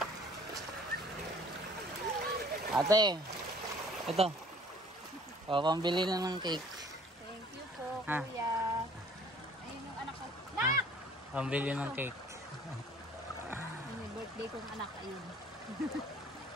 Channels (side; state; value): both; normal; correlation 0.53